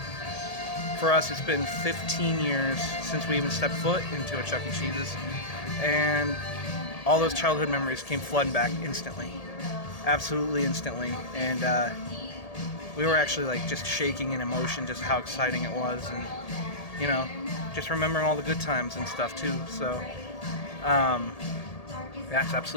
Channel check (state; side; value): late; right; 1.8 ms